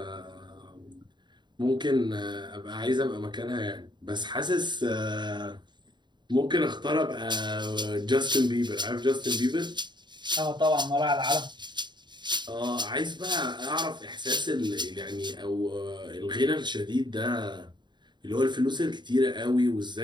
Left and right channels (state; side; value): late; left; 0.22 ms